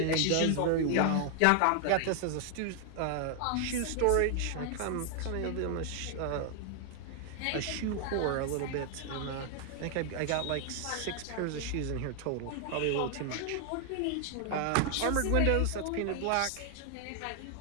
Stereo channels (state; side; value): different; both; correlation 0.00